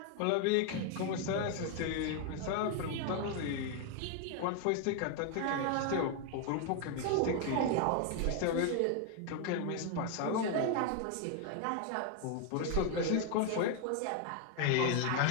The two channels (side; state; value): both; different; correlation 0.00